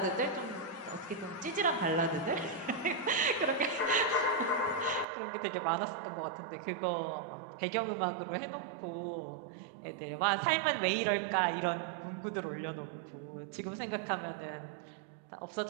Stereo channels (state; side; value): drops out; left; at 5.1 s